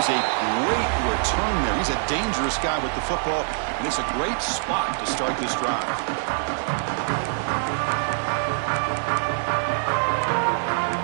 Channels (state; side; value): silent; left; digital silence